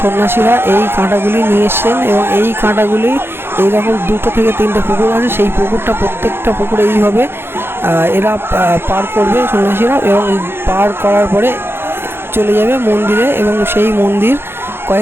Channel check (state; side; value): late; left; 0.11 ms